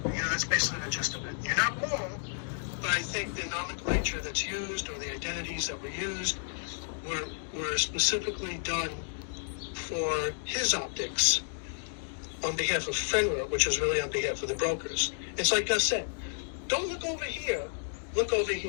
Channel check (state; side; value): silent; right; digital silence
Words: That's basically the gist of it. You're not wrong, but I think the nomenclature that's used or the identities that were used were specifically done for his optics on behalf of FNGR, which is really on behalf of the brokers. It's like Gus said, don't look over here, look over